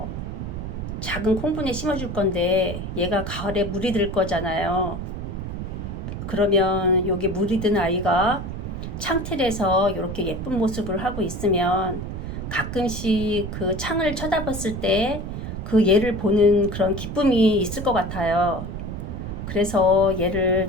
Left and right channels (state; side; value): noise; right; rumble, 6 dB below the sound